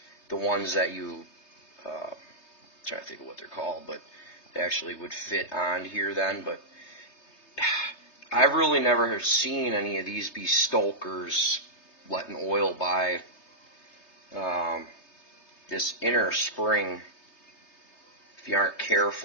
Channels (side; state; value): right; late; 3.3 ms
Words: the ones that you, trying to think of what they're called, but they actually would fit on here then. But I've really never seen any of these be stokers letting oil by this inner spring. If you aren't